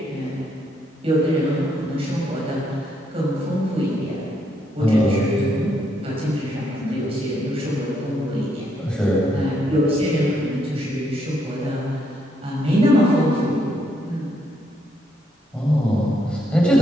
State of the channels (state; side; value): normal; both; correlation 0.74